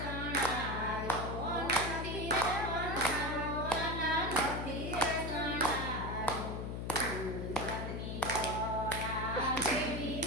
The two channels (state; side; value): noise; left; hum, 4 dB below the sound